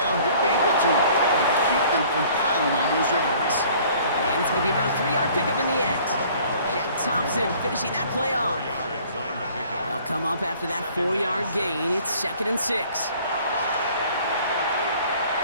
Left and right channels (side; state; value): both; inverted; correlation -0.54